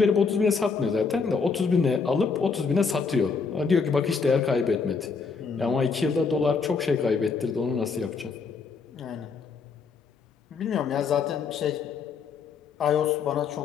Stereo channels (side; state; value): right; quieter; 5.1 dB